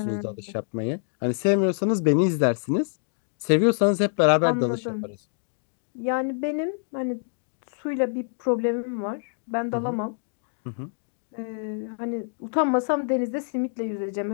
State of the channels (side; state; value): right; silent; digital silence